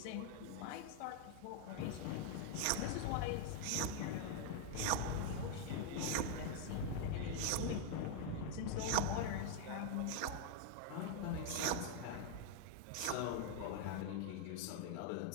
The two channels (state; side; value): different; both; correlation 0.00